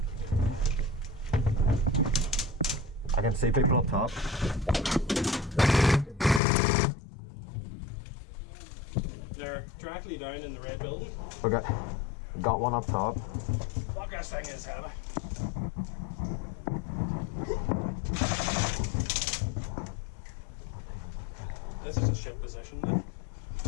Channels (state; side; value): drops out; right; at 6.4 s